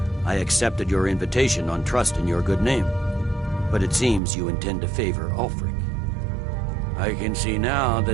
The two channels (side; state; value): left; drops out; at 4.2 s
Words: I accepted your invitation on trust in your good name. But it seems you intend to favor Ulfric. I can see now